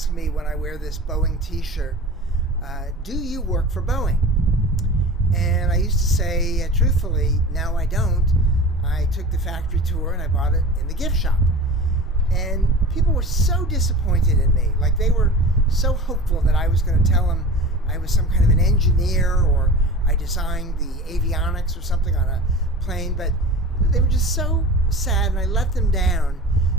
me when I wear this Boeing t-shirt, do you work for Boeing? And I used to say, truthfully, no, I don't. I took the factory tour and I bought it in the gift shop. And people were so disappointed in me. Like, they were so hopeful that I was going to tell them I was some kind of an engineer or I designed the avionics or something on a plane. But they were just so sad and I let them down.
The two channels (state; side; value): normal; both; correlation 0.36